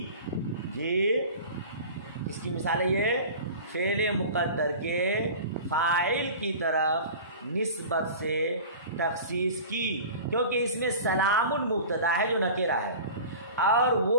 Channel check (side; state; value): both; inverted; correlation -0.37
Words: یہ اس کی مثال ہے، یہ فعل مقدر کے فاعل کی طرف نسبت سے تخصیص کی، کیونکہ اس میں سلام مبتدا ہے جو نکرہ ہے اور وہ